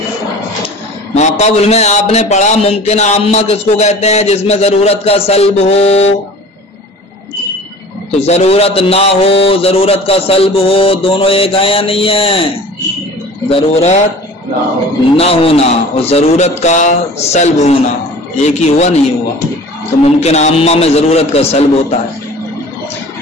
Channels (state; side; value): normal; both; correlation 0.42